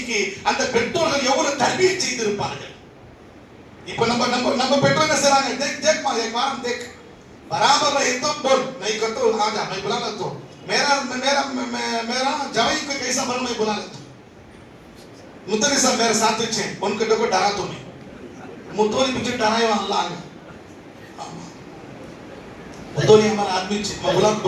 அந்த பெற்றோர்கள் எவ்வளவு தர்பியை செய்திருப்பார்கள். இப்ப நம்ம பெற்றோர் என்ன செய்றாங்க, देख मां एक बार हम देख बराबर रहे तो बोल नहीं कर तो आ जा मैं बुला लेता हूं, मेरा जवाई को कैसा बन मैं बुला लेता हूं. मुतली साहब मेरे साथ थे, उनके को डरा तो नहीं, मुतोली पीछे डराए अल्लाह ने, मुतोली हमारा आदमी थे, मैं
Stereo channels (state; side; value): identical; both; correlation 1.00